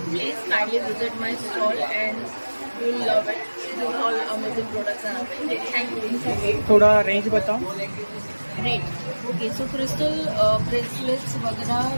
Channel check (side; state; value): both; inverted; correlation -1.00